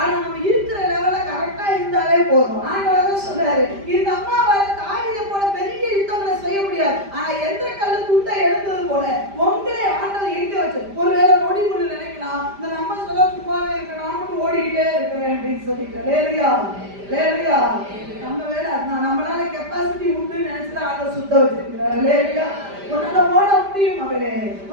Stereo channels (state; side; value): late; left; 5.0 ms